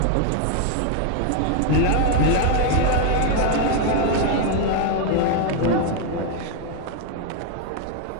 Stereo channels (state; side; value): different; both; correlation 0.00